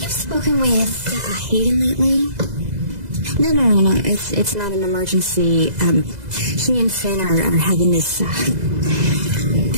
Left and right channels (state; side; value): late; left; 2.0 ms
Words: spoken with Hayden lately? No. It's not an emergency. She and Finn are having this,